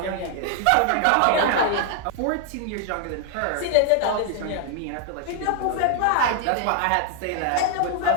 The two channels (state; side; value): different; both; correlation 0.00